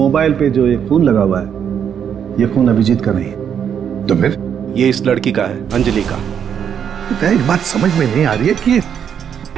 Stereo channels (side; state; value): left; quieter; 8.2 dB